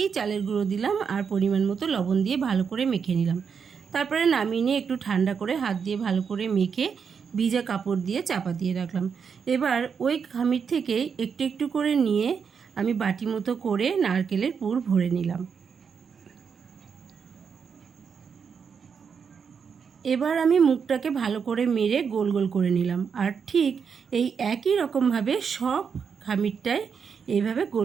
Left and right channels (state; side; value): quieter; left; 6.5 dB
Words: চালের গুঁড়ো দিলাম আর পরিমাণ মতো লবণ দিয়ে ভালো করে মেখে নিলাম। তারপরে নামিয়ে নিয়ে একটু ঠান্ডা করে হাত দিয়ে ভালো করে মেখে ভিজা কাপড় দিয়ে চাপা দিয়ে রাখলাম। এবার ওই খামির থেকে একটু একটু করে নিয়ে আমি বাটি মতো করে নারকেলের পুর ভরে নিলাম। এবার আমি মুখটাকে ভালো করে মেরে গোল গোল করে নিলাম আর ঠিক এই একই রকমভাবে সব খামিরটায় এইভাবে